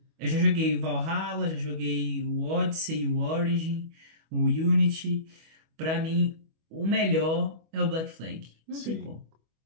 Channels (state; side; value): late; left; 25 ms